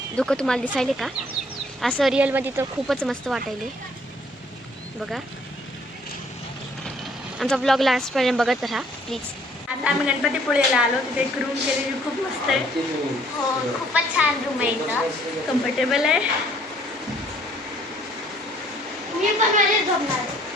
धुकं तुम्हाला दिसायले का? असं रिअलमध्ये तर खूपच मस्त वाटायले. बघा आमचा ब्लॉग लास्टपर्यंत बघत राहा प्लीज. आता आम्ही गणपतीपुळेला आलो, तिथे एक रूम केलेली खूप मस्त आहे. हो खूपच छान रूम आहे इथं. कम्फर्टेबल आहे. मी पण माझ्याच झोपणार आहे.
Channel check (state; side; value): normal; both; correlation 0.61